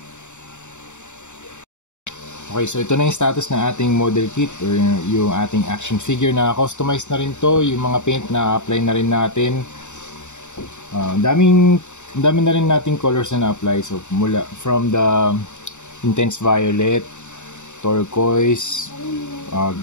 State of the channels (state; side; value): late; right; 0.84 ms